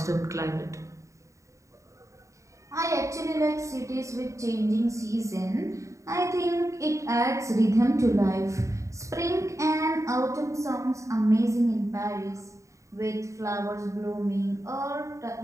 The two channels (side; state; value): left; late; 0.15 ms